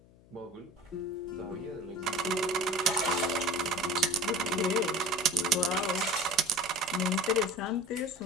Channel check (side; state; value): left; noise; hum, 26 dB below the sound